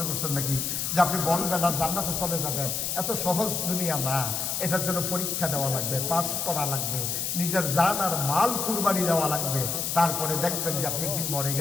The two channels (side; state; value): left; noise; hiss, 1 dB below the sound